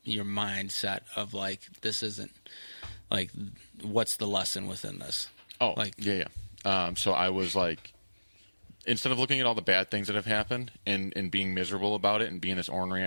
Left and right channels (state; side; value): inverted; both; correlation -1.00